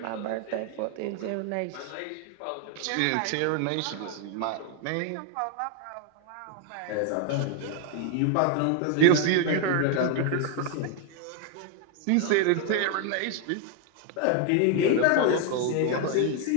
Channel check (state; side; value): different; both; correlation 0.00